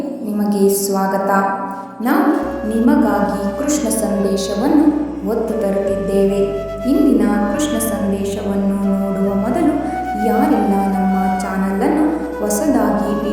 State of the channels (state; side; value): identical; both; correlation 1.00